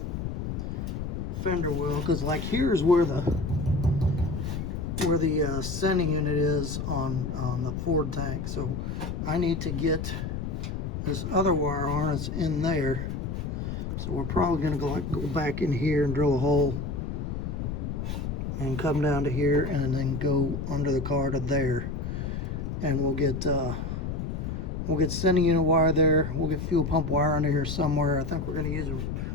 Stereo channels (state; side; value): noise; left; rumble, 4 dB below the sound